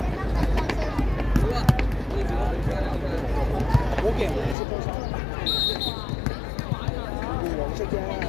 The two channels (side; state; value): right; drops out; at 4.5 s